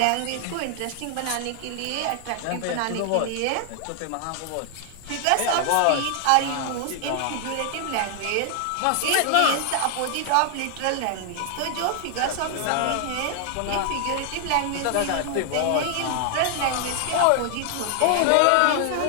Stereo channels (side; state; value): both; different; correlation 0.00